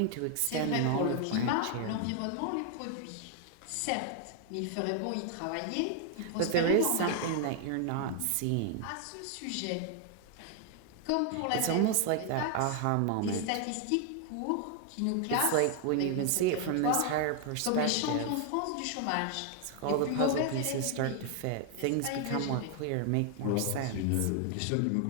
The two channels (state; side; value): different; both; correlation 0.00